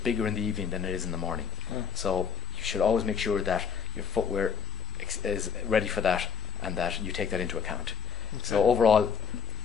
in the evening than it is in the morning. So you should always make sure that your footwear is ready for that and that you take that into account. So overall,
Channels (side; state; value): right; quieter; 6.1 dB